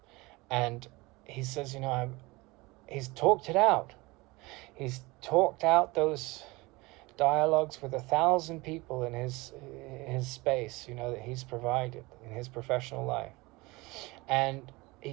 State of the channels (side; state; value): left; quieter; 22.9 dB